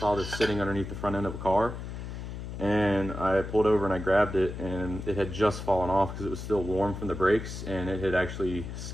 this sitting underneath the front end of a car, and I pulled over and I grabbed it, and it had just fallen off because it was still warm from the brakes, and it had actually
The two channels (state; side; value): noise; left; hum, 8 dB below the sound